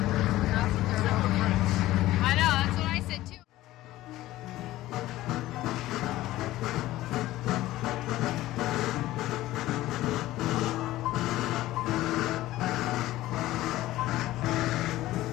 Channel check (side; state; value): right; quieter; 16.0 dB